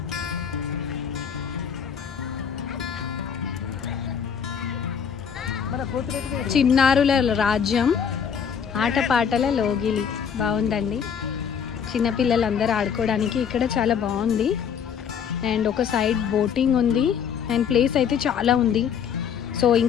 చిన్నారుల రాజ్యం, ఆటపాటల లోగిలి. బాగుందండి. చిన్నపిల్లలందరూ ఆడుకోవడానికి ఇక్కడ చాలా బాగుంది. అండ్ ఒక సైడ్ బోటింగ్ ఉంది. అండ్ ప్లేస్ అయితే చాలా ఉంది. సో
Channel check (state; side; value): quieter; right; 7.5 dB